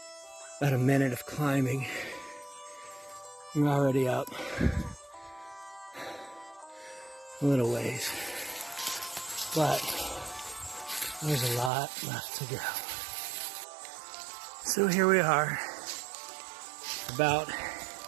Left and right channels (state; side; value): drops out; left; at 11.7 s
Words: about a minute of climbing, you're already up a little ways, but there's a lot left to go. So here we are, about